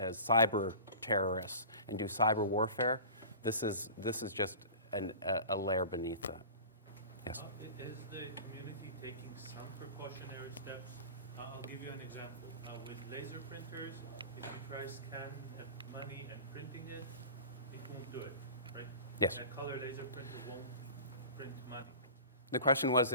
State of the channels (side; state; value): both; inverted; correlation -0.38